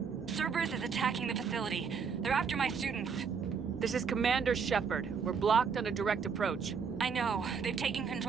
Cerberus is attacking the facility. They're after my students. This is Commander Shepard. We're blocked on a direct approach. I know. They've taken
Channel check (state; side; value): quieter; left; 6.0 dB